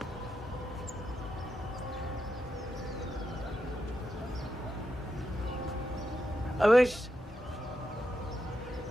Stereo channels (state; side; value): normal; both; correlation 0.86